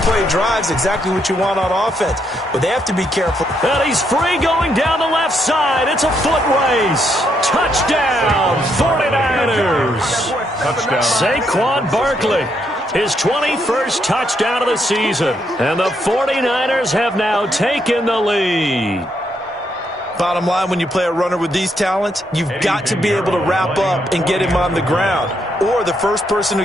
play drive is exactly what you want on offense. But they have to be careful. And he's free going down the left side. It's a foot race. Touchdown, 49ers. Touchdown. Saquon Barkley. His 21st touchdown of the season. And the 49ers have now taken the lead. Bottom line, when you play a runner with these talents, you've got to be able to wrap up and get him on the ground. Or the first person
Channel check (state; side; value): normal; both; correlation 0.76